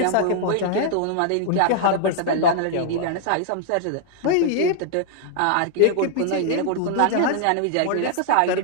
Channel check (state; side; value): different; both; correlation -0.01